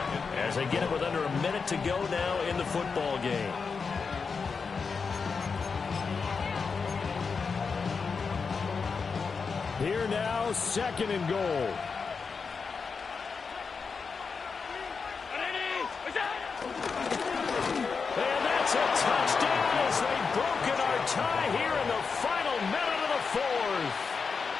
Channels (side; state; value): right; quieter; 5.2 dB